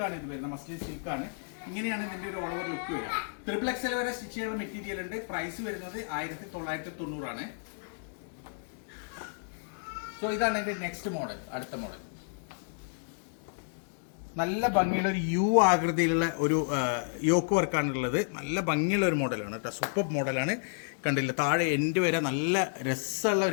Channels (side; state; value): right; silent; digital silence